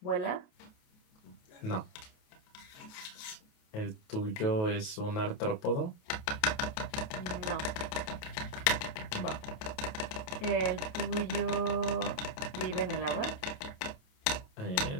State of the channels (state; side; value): late; right; 28 ms